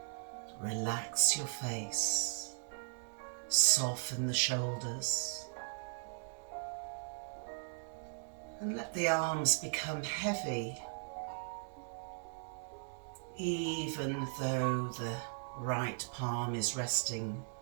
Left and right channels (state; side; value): silent; left; digital silence